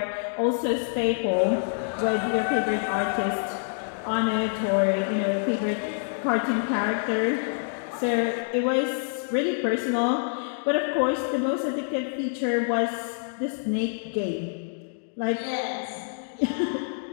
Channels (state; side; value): silent; right; digital silence